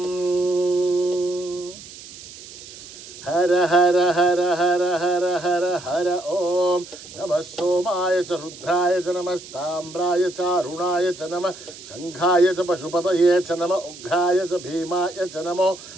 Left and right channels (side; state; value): right; noise; hiss, 16 dB below the sound